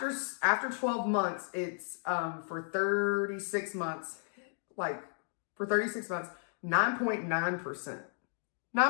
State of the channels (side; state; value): right; silent; 55 dB below the other